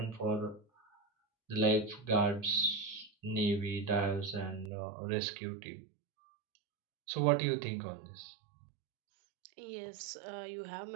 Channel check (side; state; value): left; drops out; at 4.7 s